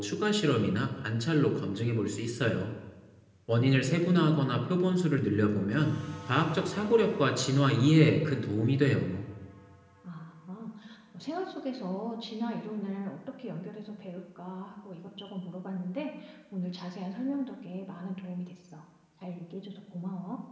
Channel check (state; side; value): identical; both; correlation 1.00